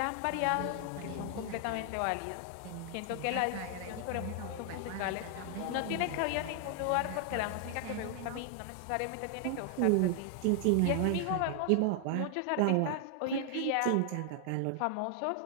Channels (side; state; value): both; different; correlation 0.00